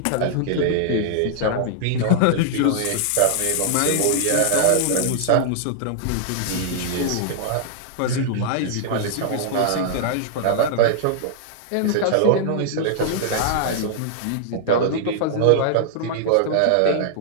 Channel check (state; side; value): different; both; correlation -0.01